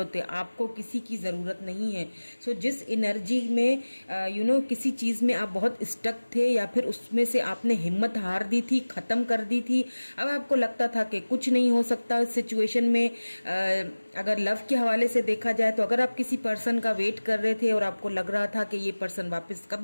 है, आपको किसी की ज़रूरत नहीं है। सो जिस एनर्जी में किसी चीज़ में आप बहुत स्टक थे या फिर उसमें से आपने हिम्मत हार दी थी, ख़त्म कर दी थी, अब आपको लगता था कि कुछ नहीं हो सकता इस सिचुएशन में। अगर लव के हवाले से देखा जाए तो अगर आप किसी पर्सन का वेट कर रहे थे और आपको लग रहा था कि ये पर्सन वापस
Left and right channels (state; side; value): inverted; both; correlation -1.00